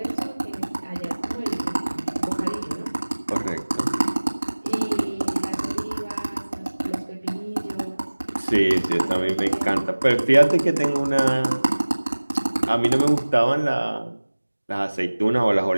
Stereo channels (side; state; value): both; inverted; correlation -1.00